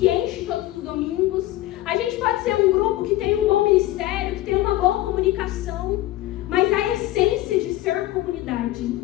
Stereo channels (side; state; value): right; quieter; 16.0 dB